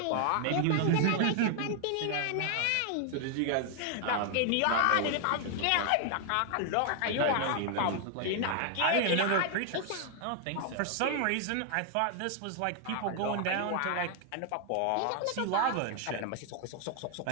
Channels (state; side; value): different; both; correlation 0.00